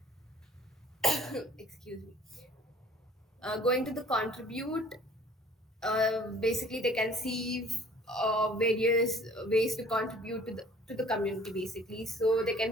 excuse me, going to the contribute, basically they can see various ways to contribute to the community. Basically, so they can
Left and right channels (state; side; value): normal; both; correlation 0.52